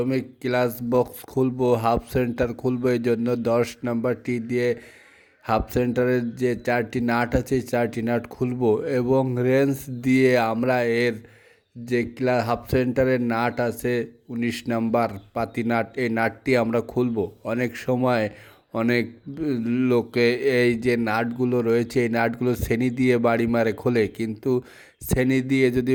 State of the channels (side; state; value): both; identical; correlation 1.00